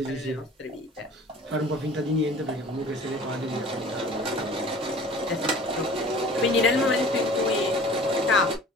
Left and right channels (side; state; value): both; normal; correlation 0.45